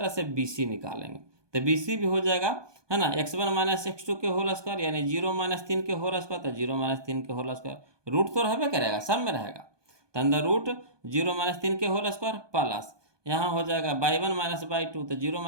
से BC निकालेंगे, तो BC भी हो जाएगा, है ना, x1 माइनस x2 के होल स्क्वायर, यानी 0 माइनस 3 के होल स्क्वायर, तो 0 माइनस 3 के होल स्क्वायर। रूट तो रहबे करेगा, सब में रहेगा, तो अंदर रूट 0 माइनस 3 के होल स्क्वायर प्लस, यहाँ हो जाएगा y1 माइनस y2, तो 0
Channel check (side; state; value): left; late; 1.2 ms